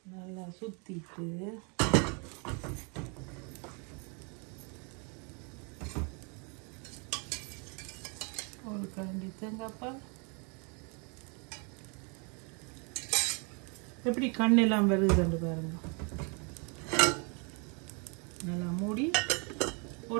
நல்லா சுத்திட்டு ஒரு கரண்டி தேங்காய் பால். எப்படி கண்ணெல்லாம் வருதுன்னு பாருங்க. நல்லா மூடி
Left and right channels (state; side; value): quieter; left; 34.6 dB